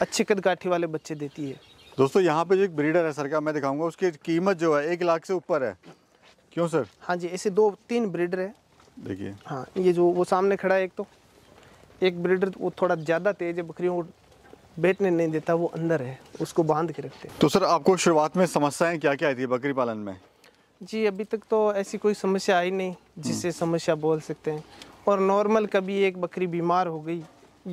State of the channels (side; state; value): both; identical; correlation 1.00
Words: अच्छे कदकाठी वाले बच्चे देती है। दोस्तों यहाँ पे जो एक ब्रीडर है सर का मैं दिखाऊंगा, उसकी कीमत जो है 1 लाख से ऊपर है। क्यों सर? हाँ जी, ऐसे 2-3 ब्रीडर है। देखिए हाँ, ये जो वो सामने खड़ा है एक ब्रीडर वो थोड़ा ज़्यादा तेज है, बकरियों को बैठने नहीं देता, वो अंदर है, उसको बांध के रखते हैं। तो सर आपको शुरुआत में समस्याएं क्या क्या आई थी बकरी पालन में? जी अभी तक तो ऐसी कोई समस्या आई नहीं जिससे समस्या बोल सकते हैं। और नॉर्मल कभी एक बकरी बीमार हो गई,